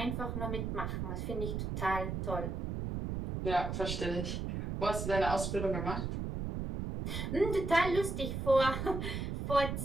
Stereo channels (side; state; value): right; noise; rumble, 3 dB below the sound